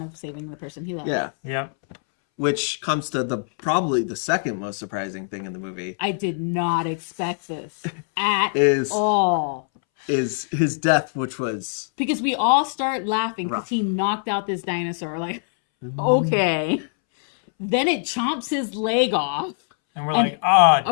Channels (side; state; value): right; silent; 63 dB below the other